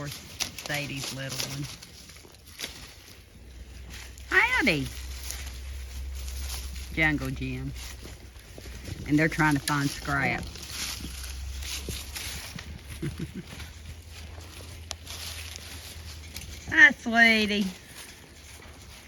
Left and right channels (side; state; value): both; identical; correlation 1.00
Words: Sadie's little one. Howdy. Jungle Jim. And they're trying to find scrap. Hi, sweetie.